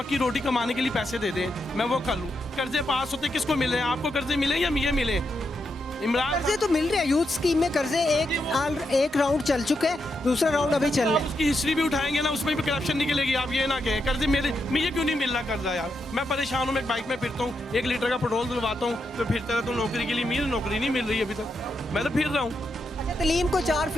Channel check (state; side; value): normal; both; correlation 0.83